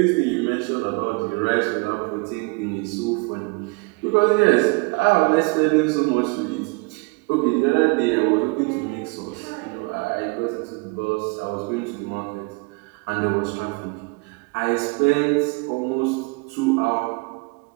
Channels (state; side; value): quieter; left; 30.0 dB